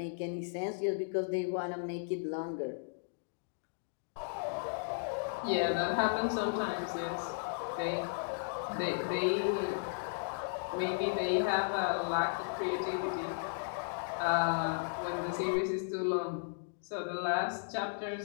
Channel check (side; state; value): right; silent; digital silence